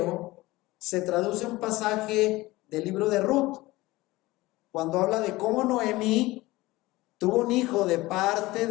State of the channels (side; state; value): right; quieter; 19.6 dB